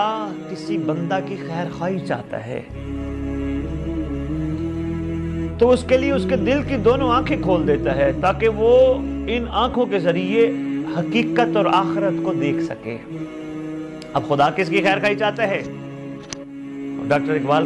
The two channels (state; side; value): identical; both; correlation 1.00